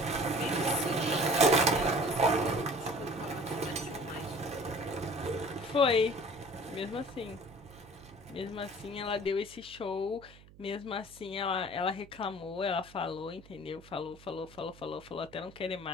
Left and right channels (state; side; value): noise; right; hum, 22 dB below the sound